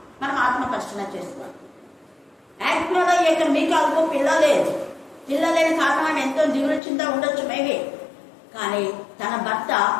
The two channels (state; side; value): drops out; right; at 6.8 s